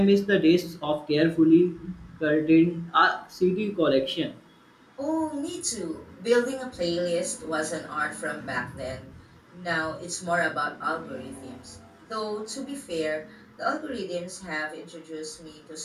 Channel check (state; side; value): identical; both; correlation 1.00